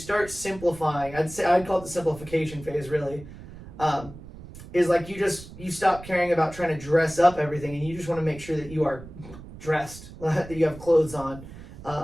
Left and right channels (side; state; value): right; noise; rumble, 16 dB below the sound